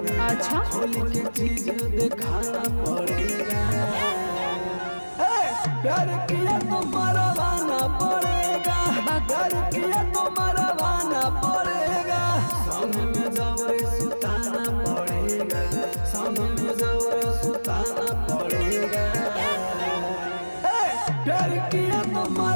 अच्छा, होली के चीज दिखाना पड़ेगा। प्यार किया तो मरवाना पड़ेगा। प्यार किया तो मरवाना पड़ेगा। संग में जबरे सुताना पड़ेगा। संग में जबरे सुताना पड़ेगा। प्यार किया तो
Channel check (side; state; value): both; inverted; correlation -1.00